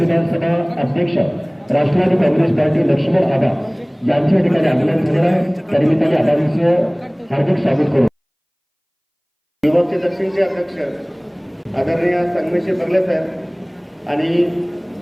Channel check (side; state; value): both; identical; correlation 1.00